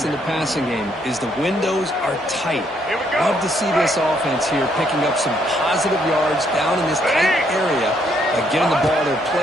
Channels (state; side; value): normal; both; correlation 0.71